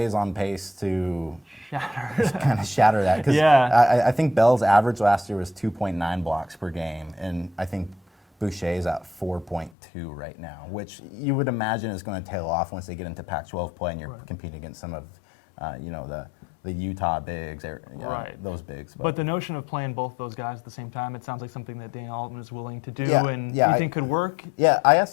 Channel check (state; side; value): drops out; right; at 9.7 s